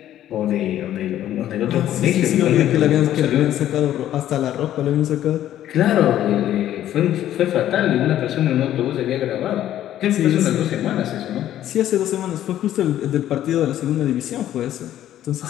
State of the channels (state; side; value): quieter; right; 12.1 dB